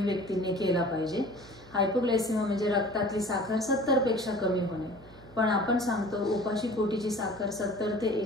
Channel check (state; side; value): noise; right; hum, 22 dB below the sound